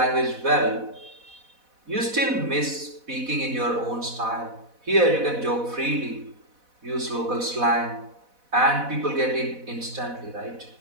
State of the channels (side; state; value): left; late; 4.1 ms